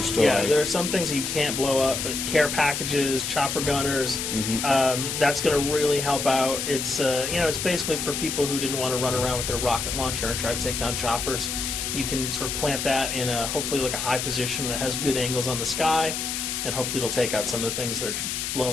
Yeah, there are some things that you can't blow up, but care packages, chopper gunners, that's going to really help out. It's it's basically for people who didn't want to run around with their rocket launcher and try to take down choppers. You can sort of plant that in a hopefully like a high position that has good angles on the sky, and hopefully it'll take out some of the things that are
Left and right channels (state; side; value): noise; left; hiss, 3 dB below the sound